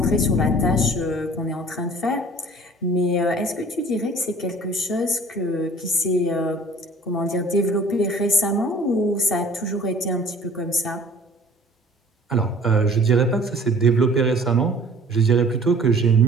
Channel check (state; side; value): normal; both; correlation 0.49